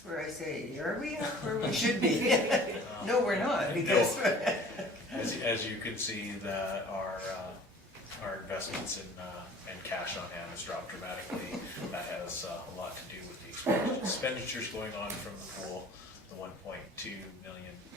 where I say, are we up where we should be? No, we're not, because. As you can see, that our investments in cash on hand has dropped dramatically. That has a lot to do with the expenditures going on from the pool, the 1.2 million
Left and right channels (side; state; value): both; normal; correlation 0.48